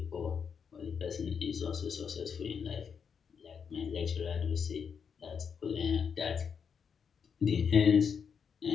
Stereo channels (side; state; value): right; quieter; 6.6 dB